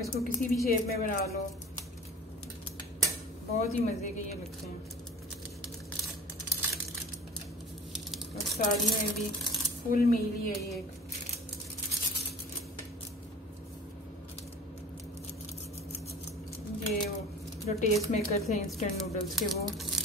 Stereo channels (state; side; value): normal; both; correlation 0.42